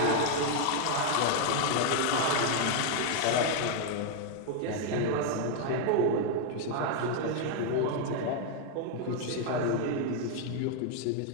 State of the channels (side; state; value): both; different; correlation 0.00